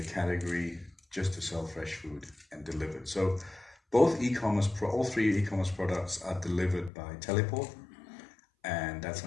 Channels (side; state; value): right; drops out; at 6.9 s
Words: category just to sell fresh food and delivered. So both all three e-commerce products are delivered by Teleport, and that's